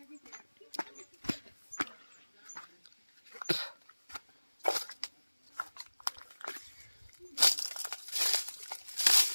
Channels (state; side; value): inverted; both; correlation -1.00